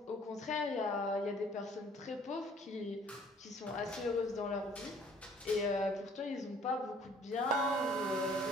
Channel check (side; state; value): both; normal; correlation 0.57